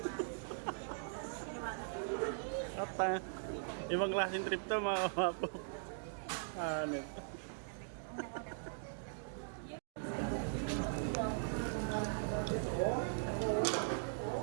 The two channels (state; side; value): silent; left; digital silence